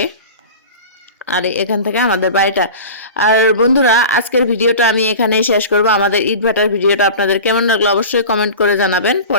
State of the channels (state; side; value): inverted; both; correlation -0.35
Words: আর এখান থেকে আমাদের বাড়িটা। আর বন্ধুরা, আজকের ভিডিওটা আমি এখানেই শেষ করব। আমাদের ইট ভাটার ভিডিওটা আপনাদের কেমন লাগলো অবশ্যই কমেন্ট করে জানাবেন।